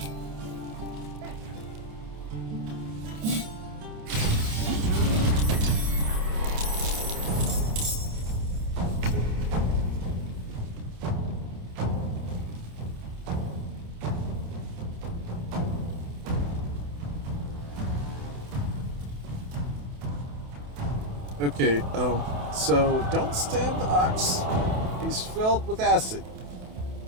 Okay, so don't stab the ox. He's filled with acid.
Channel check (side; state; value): left; late; 28 ms